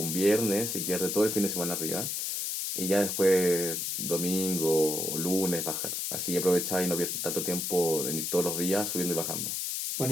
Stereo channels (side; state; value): left; noise; hiss, 2 dB below the sound